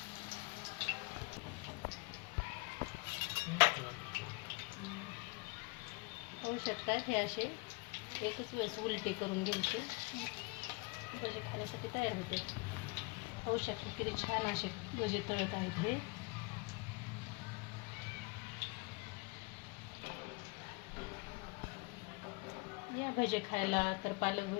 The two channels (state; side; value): quieter; right; 27.6 dB